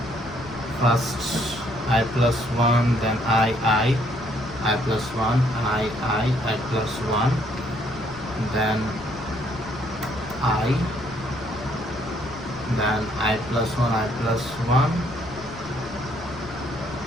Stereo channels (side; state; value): left; noise; rumble, 19 dB below the sound